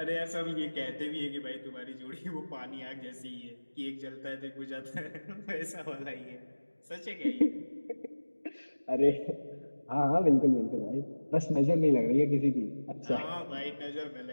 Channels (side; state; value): both; inverted; correlation -1.00